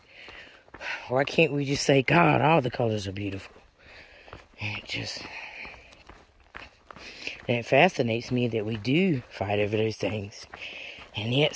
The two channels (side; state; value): both; identical; correlation 1.00